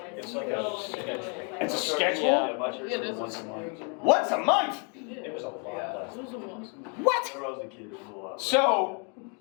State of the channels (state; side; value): quieter; right; 37.6 dB